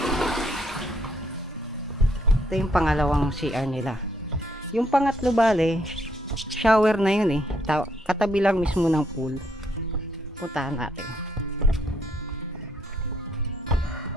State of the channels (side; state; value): both; normal; correlation 0.71